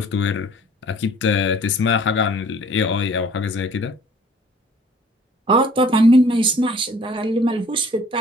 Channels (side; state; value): both; normal; correlation 0.53